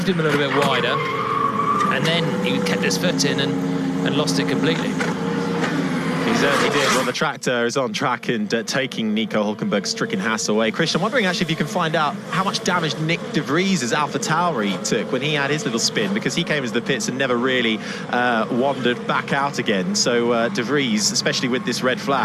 him a little bit wider, and then he kept his foot in and lost it completely. He certainly did. Well, the tractor is on track and taking Nico Hulkenberg's stricken Haas away. Christian, I'm wondering actually if you can find out how much damage Nick de Vries' AlphaTauri took when he had his little spin, because he came into the pits and never really wandered back out again. So de Vries, especially with this red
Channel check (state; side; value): identical; both; correlation 1.00